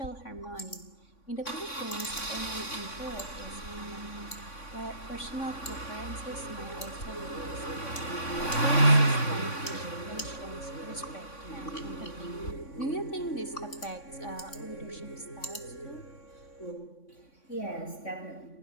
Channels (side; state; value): right; late; 3.6 ms